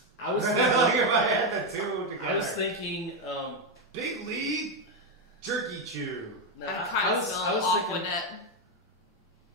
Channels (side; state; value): both; normal; correlation 0.06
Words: I was like thinking. if I had the two together. I was thinking. Big League Jerky Chew. No, I kind of smell I was thinking. Aquanet.